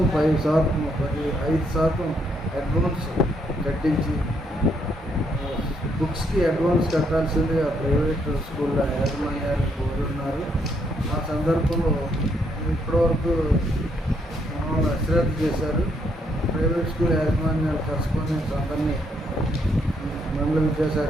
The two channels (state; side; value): normal; both; correlation 0.73